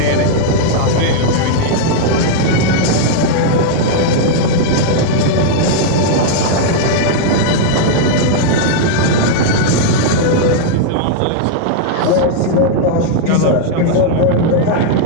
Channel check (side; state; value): both; different; correlation -0.01